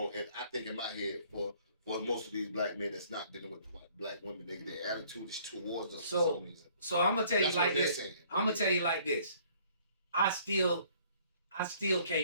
And I think in my head for most of these black men that's not dealing with black women, their attitude is towards us for some reason. So I'm gonna tell you That's like what they're this. saying. I'm gonna tell you like this. I still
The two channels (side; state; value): both; inverted; correlation -0.59